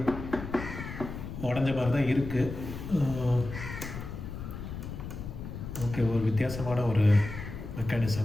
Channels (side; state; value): left; noise; rumble, 8 dB below the sound